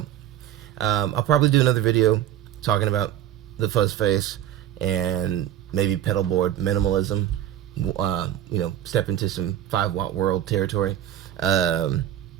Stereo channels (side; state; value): left; quieter; 11.7 dB